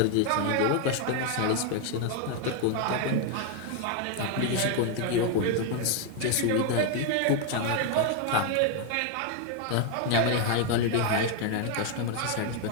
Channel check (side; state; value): both; different; correlation 0.01